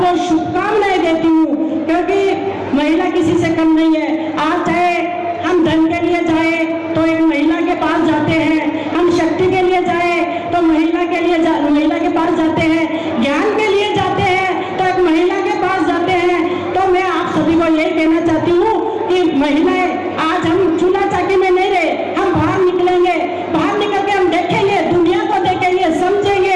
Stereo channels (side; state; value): both; identical; correlation 1.00